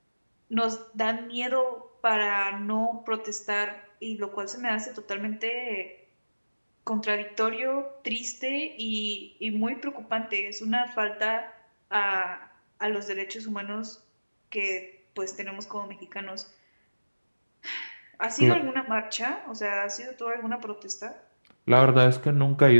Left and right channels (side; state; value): both; inverted; correlation -1.00